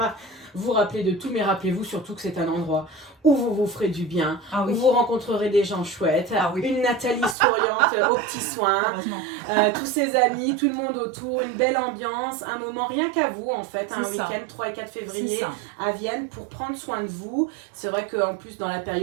vous rappeler de tout, mais rappelez-vous surtout que c'est un endroit où vous vous ferez du bien, où vous rencontrerez des gens chouettes, une Nathalie souriante aux petits soins, tous ses amis, tout le monde autour, une belle ambiance, un moment rien qu'à vous en fait, un week-end 3 et 4 février à Vienne pour prendre soin de vous. C'est vrai qu'en plus dans la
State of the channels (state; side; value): drops out; left; at 7.4 s